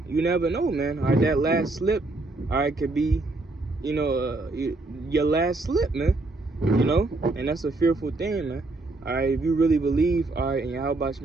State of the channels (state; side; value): quieter; left; 3.0 dB